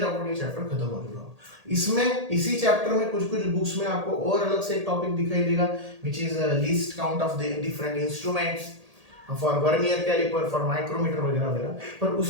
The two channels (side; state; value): left; late; 1.8 ms